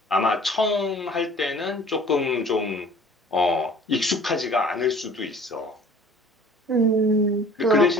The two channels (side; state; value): both; normal; correlation 0.49